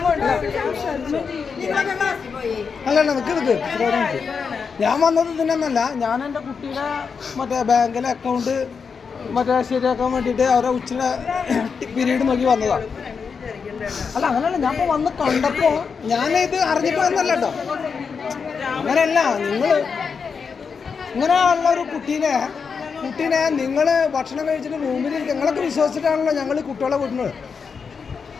അല്ല നിക്ക് ഞാൻ വന്നത് ഇതിനൊന്നല്ല. ഞാൻ എൻ്റെ കുട്ടിയുടെ മറ്റേ ബാങ്കിലെ അക്കൗണ്ട് മറ്റേ ശരിയാക്കാൻ വേണ്ടിയിട്ട് അവരെ ഉച്ചയുടെ പീരീഡ് നോക്കി വന്നതാണ്. അല്ല അങ്ങനെയല്ല, ഞാൻ ഇപ്പോൾ വന്ന് കണ്ടപ്പോൾ ഞാനിത് അറിഞ്ഞിട്ട് വന്നല്ല കേട്ടോ. അങ്ങനെയല്ല, നിങ്ങൾ ഇങ്ങനെയുള്ള ഒരു കുട്ടീനെ നിങ്ങൾ ഭക്ഷണം കഴിച്ചിട്ട് റൂമിൽ നിങ്ങളൊക്കെ വിശ്വസിച്ചിട്ടാണല്ലോ ഞങ്ങൾ കുട്ടികളെ വിടുന്നത്.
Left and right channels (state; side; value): quieter; right; 5.7 dB